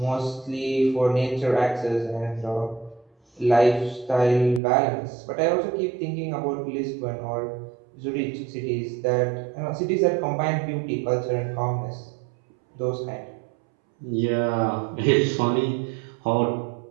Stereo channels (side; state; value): left; drops out; at 4.6 s